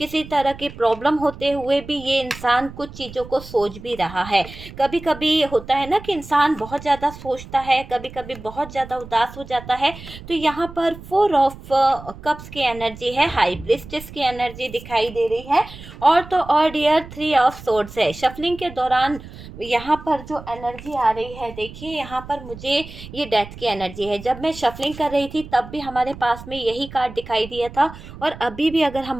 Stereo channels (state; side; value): noise; right; rumble, 15 dB below the sound